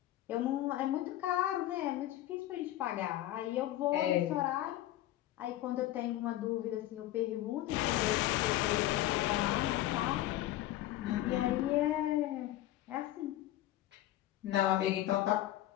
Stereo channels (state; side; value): quieter; right; 14.5 dB